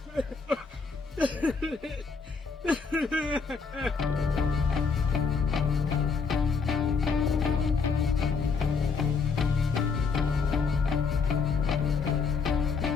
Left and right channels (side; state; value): right; quieter; 5.1 dB